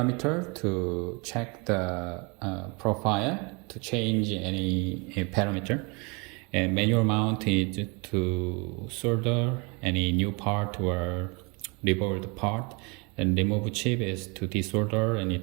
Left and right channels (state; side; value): quieter; left; 30.1 dB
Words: to check the profile to change any parameter. And manual mount is to solder any new part or revolved part, and remove chip is to desolder any